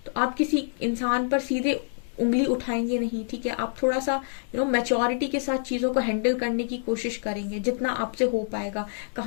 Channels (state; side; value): silent; right; digital silence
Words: तो आप किसी इंसान पर सीधे उंगली उठाएंगे नहीं, ठीक है। आप थोड़ा सा मैच्योरिटी के साथ चीजों को हैंडल करने की कोशिश करेंगे, जितना आपसे हो पाएगा।